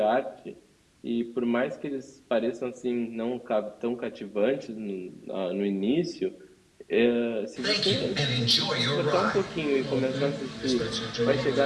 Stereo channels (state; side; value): identical; both; correlation 1.00